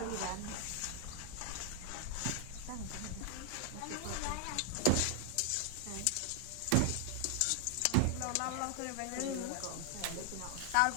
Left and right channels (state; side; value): different; both; correlation 0.00